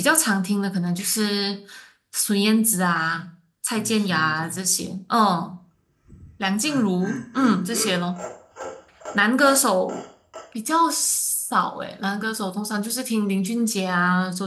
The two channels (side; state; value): both; identical; correlation 1.00